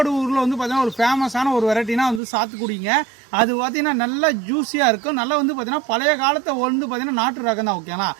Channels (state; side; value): drops out; left; at 2.2 s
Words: வந்து பார்த்தீங்கன்னா ஒரு ஃபேமஸான ஒரு வெரைட்டினா வந்து சாத்துக்குடிங்க. அது பார்த்தீங்கன்னா நல்லா ஜூஸியாக இருக்கும். நல்லா வந்து பார்த்தீங்கன்னா பழைய காலத்தை வந்து பார்த்தீங்கன்னா நாட்டு ரகம் தான். ஓகேங்களா,